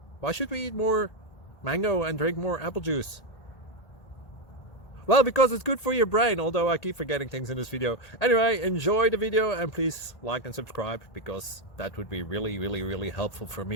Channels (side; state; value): right; late; 1.8 ms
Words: why should we eat more mango and drink more apple juice? Well, because it's good for your brain, although I keep forgetting things in this video. Anyway, enjoy the video and please like and subscribe, because that would be really helpful for